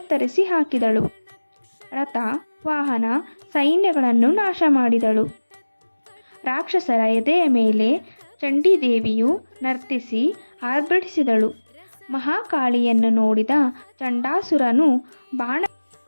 ಹಾಕಿದಳು. ರಥ, ವಾಹನ, ಸೈನ್ಯಗಳನ್ನು ನಾಶ ಮಾಡಿದಳು. ರಾಕ್ಷಸರ ಎದೆಯ ಮೇಲೆ ಚಂಡೀದೇವಿಯು ನರ್ತಿಸಿ ಆರ್ಭಟಿಸಿದಳು. ಮಹಾಕಾಳಿಯನ್ನು ನೋಡಿದ ಚಂಡಾಸುರನು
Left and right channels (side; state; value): both; inverted; correlation -1.00